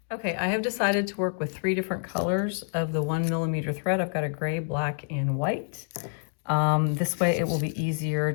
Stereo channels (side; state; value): right; silent; digital silence